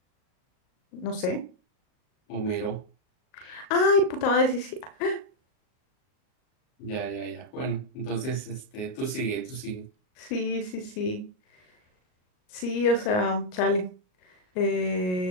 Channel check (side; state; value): right; late; 38 ms